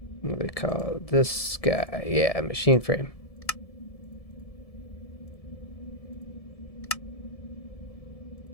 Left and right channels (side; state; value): right; late; 1.7 ms